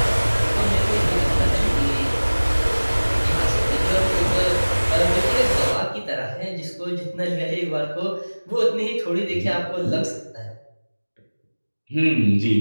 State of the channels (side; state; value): both; inverted; correlation -1.00